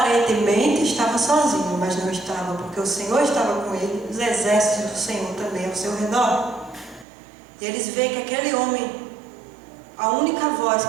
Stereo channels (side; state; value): left; drops out; at 7.1 s